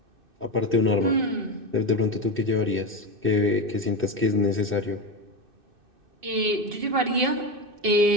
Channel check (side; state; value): left; late; 2.6 ms